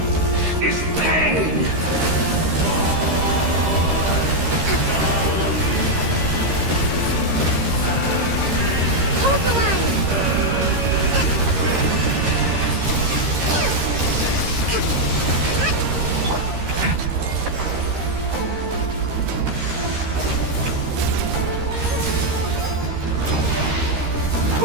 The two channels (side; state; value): left; late; 13 ms